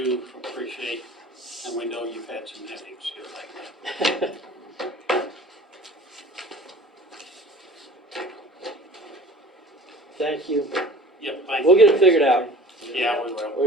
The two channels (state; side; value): normal; both; correlation 0.44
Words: appreciate, and we know you've had some headaches here lately. Thank you. Yep, thank you. We'll get it figured out. Yeah, we will.